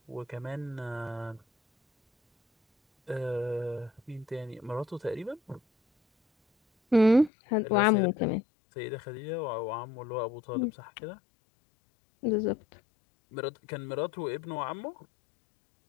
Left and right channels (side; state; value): right; drops out; at 7.3 s